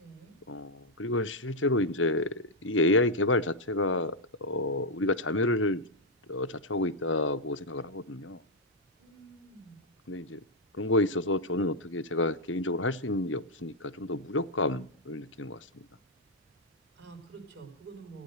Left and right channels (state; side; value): normal; both; correlation -0.02